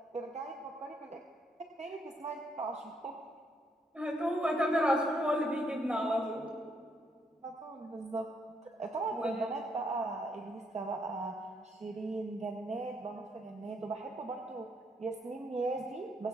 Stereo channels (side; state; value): both; normal; correlation 0.73